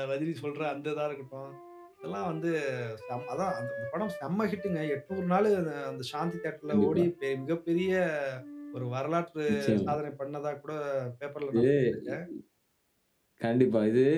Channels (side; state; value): both; identical; correlation 1.00